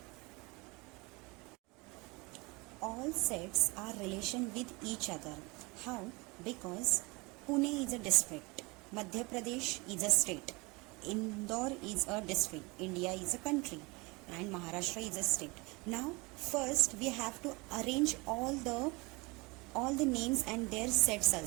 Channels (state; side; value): quieter; left; 26.1 dB